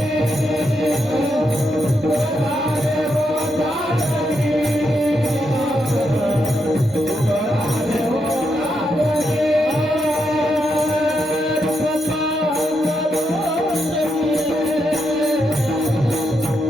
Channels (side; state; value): both; normal; correlation 0.82